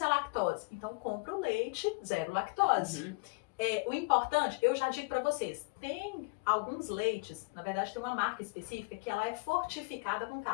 à lactose. Então compra o leite zero lactose. O importante, eu já digo para vocês, tem alguns leites, na verdade tem uma marca específica que ela é fortificada com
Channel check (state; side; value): quieter; right; 29.8 dB